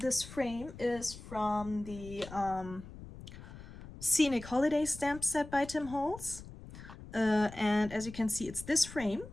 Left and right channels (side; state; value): left; noise; rumble, 15 dB below the sound